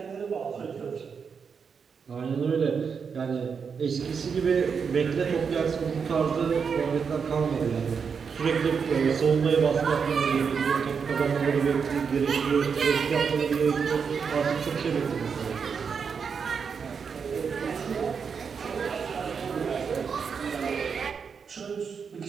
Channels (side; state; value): left; quieter; 6.1 dB